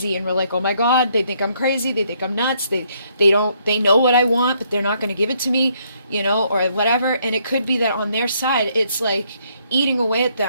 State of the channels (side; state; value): both; inverted; correlation -0.70